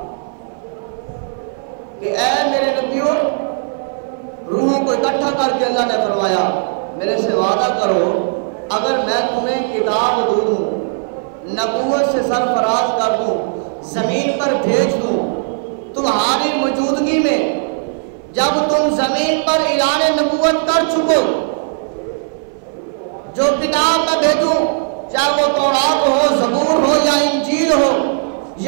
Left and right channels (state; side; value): silent; left; 60 dB below the other